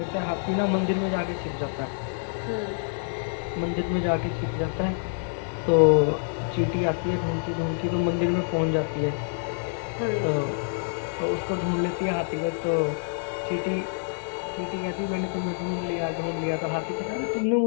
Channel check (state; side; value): silent; right; digital silence